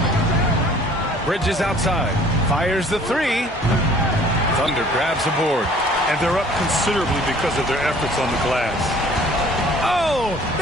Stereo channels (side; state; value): both; normal; correlation 0.53